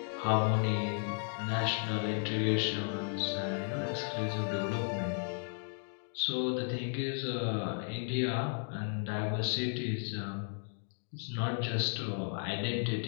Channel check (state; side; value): silent; right; 55 dB below the other